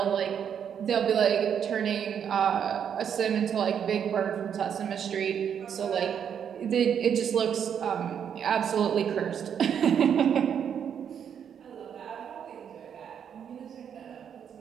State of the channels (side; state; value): left; quieter; 8.2 dB